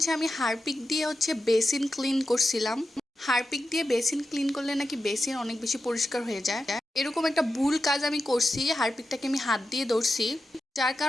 আমি হারপিক দিয়ে বেসিন ক্লিন করছিলাম। হারপিক দিয়ে বেসিন ক্লিন করলে নাকি বেসিন অনেক বেশি পরিষ্কার হয়ে যায়। এরকম একটা ভুল কাজ আমি করছি, হারপিকটাকে আমি হাত দিয়ে ধরছি, যার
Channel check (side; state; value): both; normal; correlation 0.90